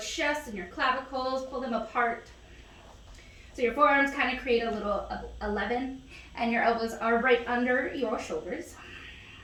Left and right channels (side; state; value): both; identical; correlation 1.00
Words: and your clavicles, pull them apart. So your forearms kind of create a little 11 and your elbows are right under your shoulders.